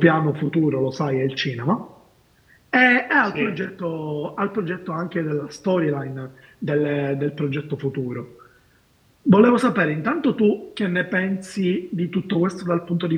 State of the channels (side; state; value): both; identical; correlation 1.00